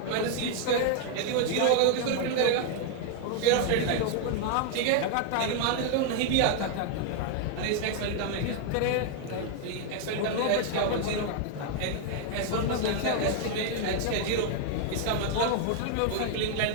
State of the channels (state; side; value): different; both; correlation 0.00